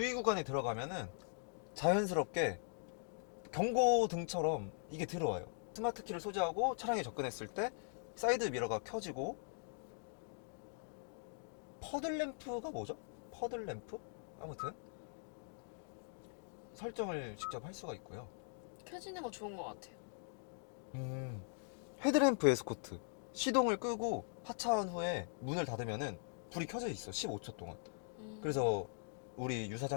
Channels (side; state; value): right; silent; digital silence